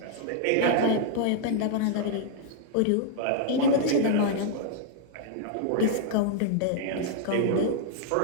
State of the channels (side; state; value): both; different; correlation -0.01